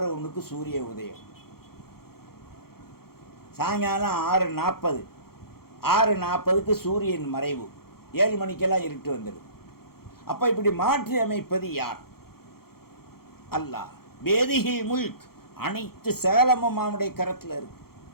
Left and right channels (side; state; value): right; late; 0.94 ms